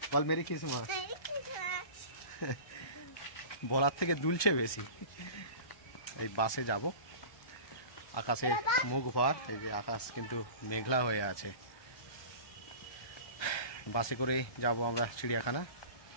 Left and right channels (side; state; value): right; late; 1.2 ms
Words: বল মেরি ক্রিসমাস। বলার থেকে দুলছে বেশি। এই বাসে যাব, আকাশে মুখ ভর, এই যে আকাশ কিন্তু মেঘলা হয়ে আছে। বাসে করেই যাব আমরা চিড়িয়াখানা।